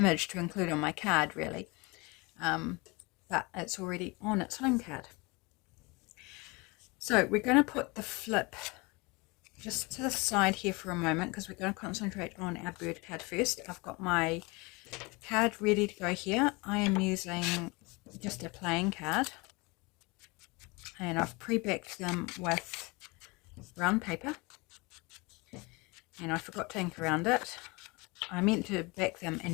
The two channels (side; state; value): right; quieter; 26.2 dB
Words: to include on my card, really. But it's already on its home card. So we're going to put the flip just to the side here for a moment, because we're going to concentrate on our bird card first. I've got my card ready to go here. I am using just a plain card, and I've pre-backed them with brown paper, and I forgot to ink around it. I meant to back them